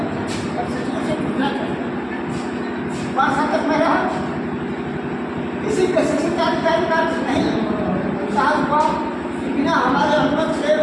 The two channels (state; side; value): identical; both; correlation 1.00